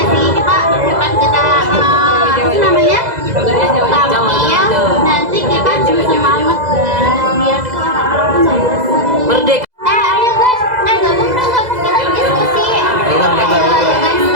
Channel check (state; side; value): late; left; 2.0 ms